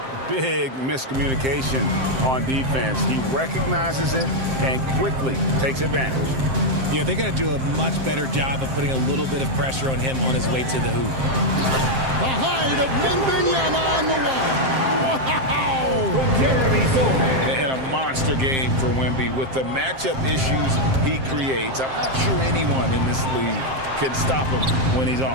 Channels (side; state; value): left; late; 7.6 ms